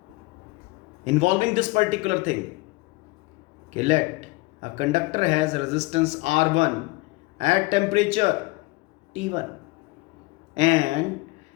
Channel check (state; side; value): quieter; right; 23.6 dB